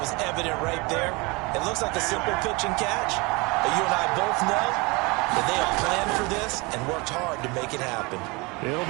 was evident right there. It looks like a simple pitch and catch, but you and I both know that they have planned for this and worked hard to make it happen. It'll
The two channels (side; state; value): left; quieter; 26.4 dB